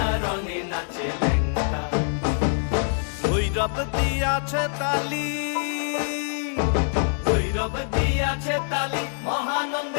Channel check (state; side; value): silent; right; 62 dB below the other